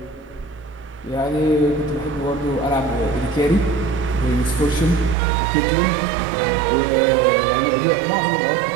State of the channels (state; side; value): drops out; left; at 5.2 s